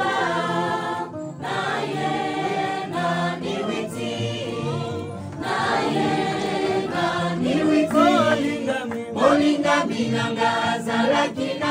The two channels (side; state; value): both; identical; correlation 1.00